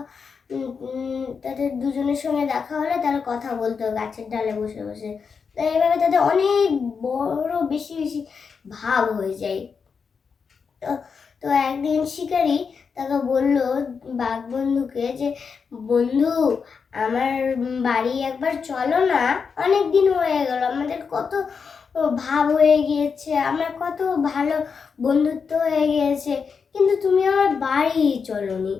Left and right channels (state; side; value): quieter; right; 5.7 dB